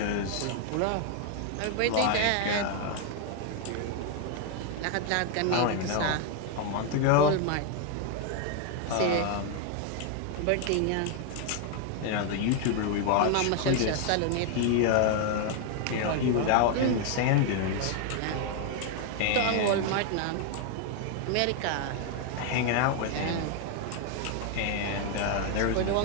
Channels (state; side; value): different; both; correlation 0.00